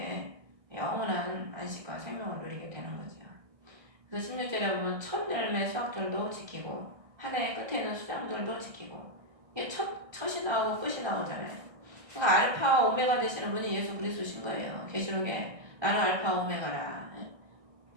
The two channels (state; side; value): late; left; 1.3 ms